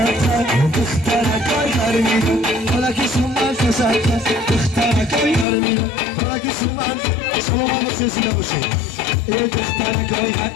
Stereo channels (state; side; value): drops out; right; at 5.5 s